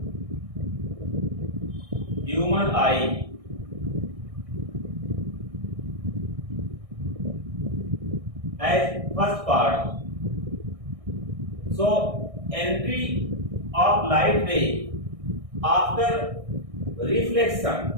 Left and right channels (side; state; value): left; late; 1.6 ms